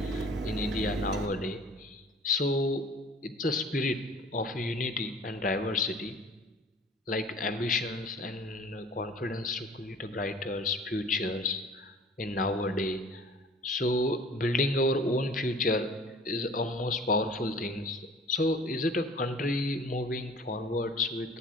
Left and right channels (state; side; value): normal; both; correlation 0.47